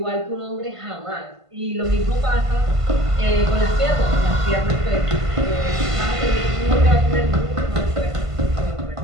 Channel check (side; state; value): left; late; 1.5 ms